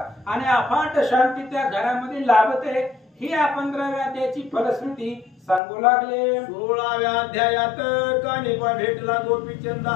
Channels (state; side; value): drops out; right; at 5.6 s